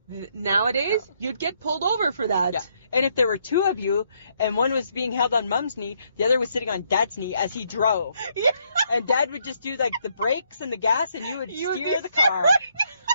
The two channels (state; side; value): inverted; both; correlation -0.72